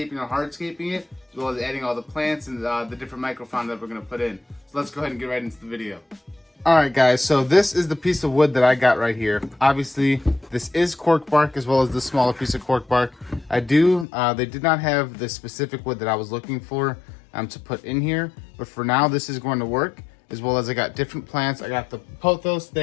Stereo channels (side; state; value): right; drops out; at 14.1 s